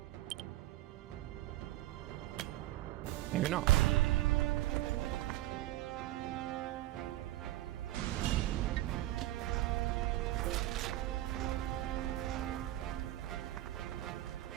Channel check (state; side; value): quieter; left; 15.9 dB